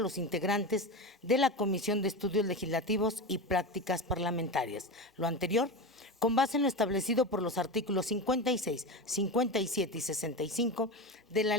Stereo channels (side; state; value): both; normal; correlation 0.22